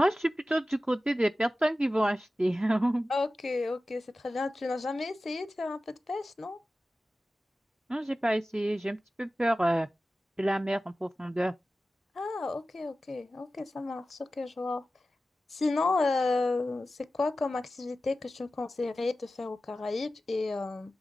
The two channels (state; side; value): normal; both; correlation 0.95